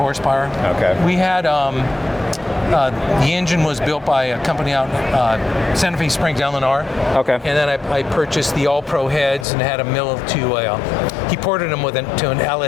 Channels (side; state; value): right; drops out; at 9.5 s